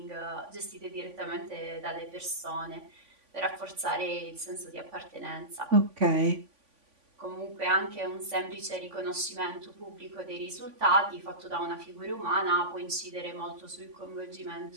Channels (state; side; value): late; left; 3.5 ms